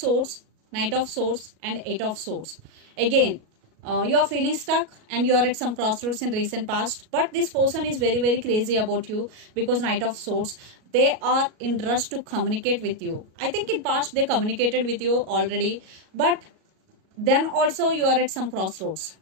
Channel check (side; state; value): left; late; 37 ms